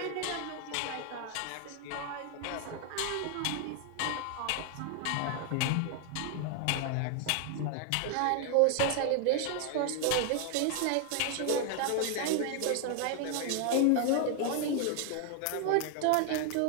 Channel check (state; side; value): different; both; correlation 0.00